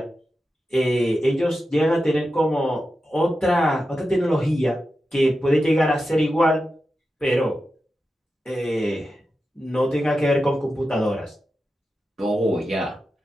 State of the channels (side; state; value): both; normal; correlation 0.91